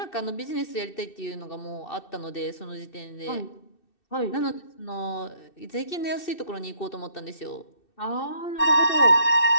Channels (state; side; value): late; right; 2.6 ms